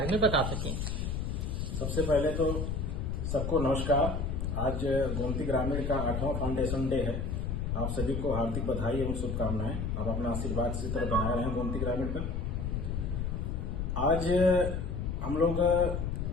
में बता सकें। सबसे पहले तो सबको नमस्कार। आज गोमती ग्रामीण का 8वां फाउंडेशन डे है। आप सभी को हार्दिक बधाई एवं शुभकामनाएं। आप अपना आशीर्वाद इसी तरह बनाए रहें गोमती ग्रामीण पर। आज हम लोग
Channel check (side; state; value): left; noise; rumble, 2 dB below the sound